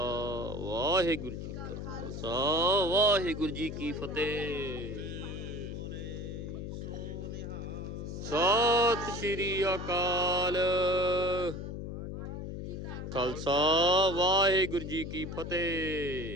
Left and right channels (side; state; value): left; noise; hum, 6 dB below the sound